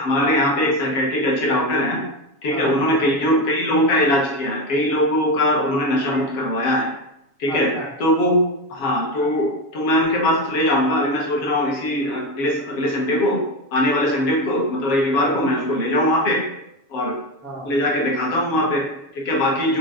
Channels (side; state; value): right; late; 7.2 ms